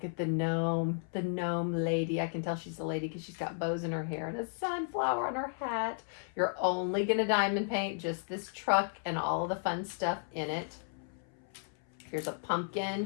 at the gnome lady. I can tell she's a lady because she's got bows in her hair and a sunflower on her hat. You're only going to diamond paint just this truck and all of the fun stuff in it. Here's a pumpkin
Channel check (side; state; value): right; silent; 55 dB below the other